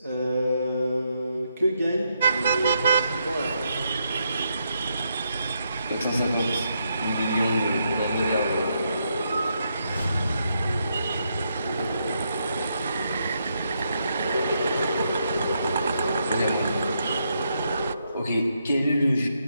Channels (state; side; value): inverted; both; correlation -0.79